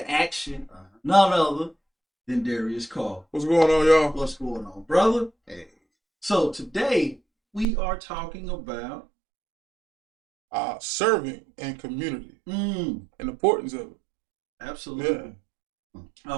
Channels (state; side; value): drops out; left; at 7.7 s